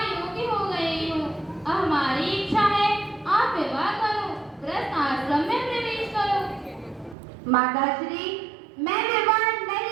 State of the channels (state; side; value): drops out; left; at 7.2 s